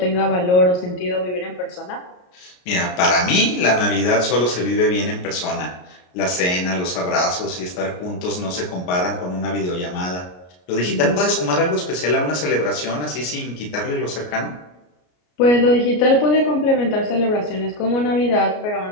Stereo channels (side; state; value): right; late; 33 ms